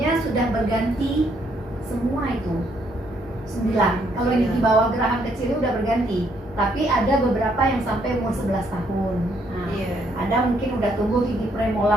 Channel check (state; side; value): normal; both; correlation 0.71